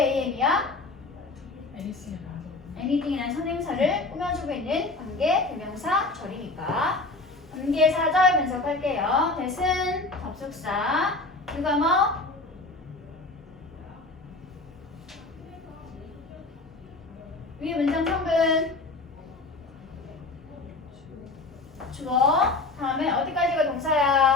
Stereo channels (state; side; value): quieter; right; 3.3 dB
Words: anything이라는 선행사를 꾸며주고 있는 관계 대명사 절이니까. 관계 사절 분석할게요. that은 접속사. 누가 뭐? 위에 문장 성분. 주어. 다음에 어디까지가